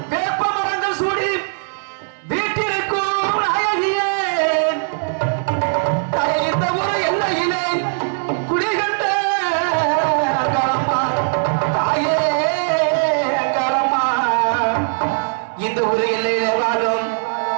வேப்ப மரங்கள் சூடி வீட்டிற்கும் அழகியே, தாயே இந்த ஒரு எல்லையிலே குடிகண்ட கரம்மா, தாயே கரம்மா இந்த ஒரு எல்லையிலே வாழும்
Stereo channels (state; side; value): silent; left; 66 dB below the other